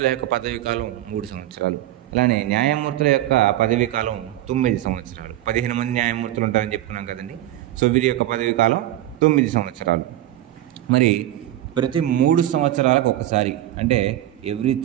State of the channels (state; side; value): quieter; left; 13.9 dB